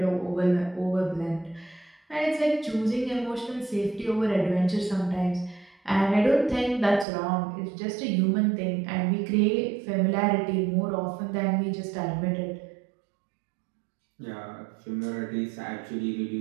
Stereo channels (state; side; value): drops out; left; at 7.1 s